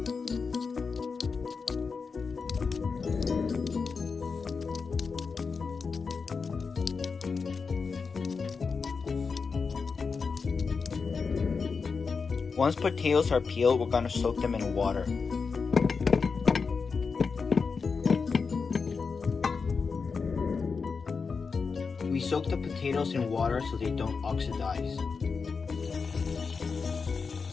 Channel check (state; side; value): quieter; right; 5.0 dB